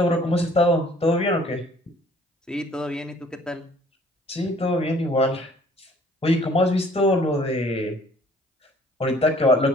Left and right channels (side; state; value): both; normal; correlation 0.57